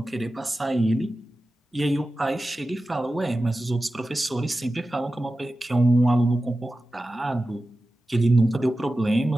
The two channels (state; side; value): normal; both; correlation 0.94